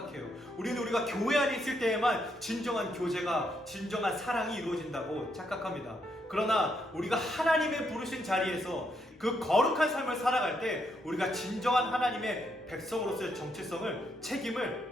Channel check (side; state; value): both; normal; correlation 0.77